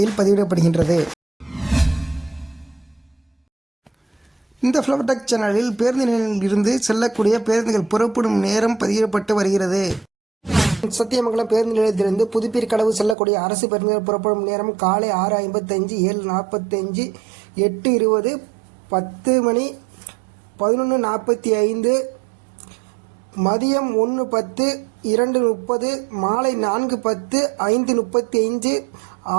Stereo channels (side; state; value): left; drops out; at 13.2 s